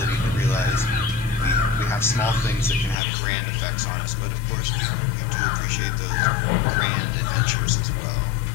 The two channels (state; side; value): drops out; right; at 3.0 s